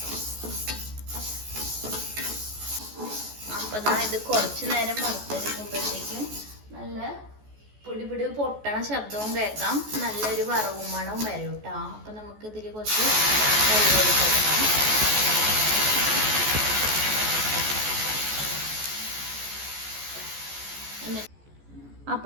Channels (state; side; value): late; left; 14 ms